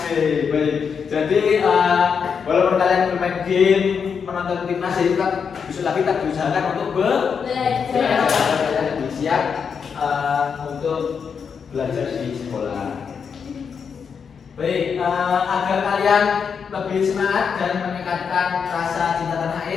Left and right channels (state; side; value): quieter; right; 6.4 dB